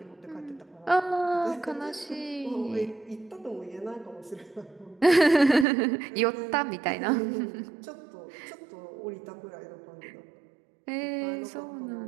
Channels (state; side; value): drops out; left; at 5.7 s